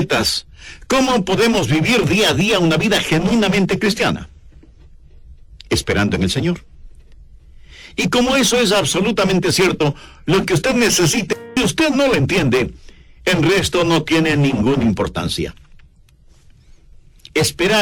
¿Cómo podemos vivir día a día una vida genuinamente cristiana? Esperando en el Señor. Y como eso es absolutamente cierto, lo que usted necesita, y usted no lo entiende, el resto no tiene ninguna importancia.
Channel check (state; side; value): identical; both; correlation 1.00